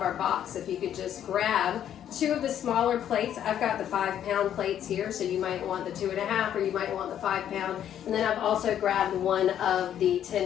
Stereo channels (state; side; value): quieter; right; 10.2 dB